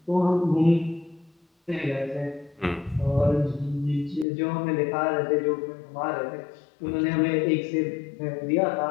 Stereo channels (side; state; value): right; drops out; at 4.2 s